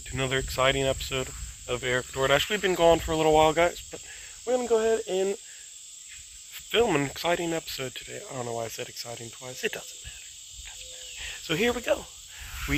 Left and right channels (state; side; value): identical; both; correlation 1.00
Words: to another exciting episode of EricDoordash. We've been gone for a little while, guys, but we're going to go ahead and film an exciting episode today. I don't know why I said exciting twice. It doesn't matter. So here we go.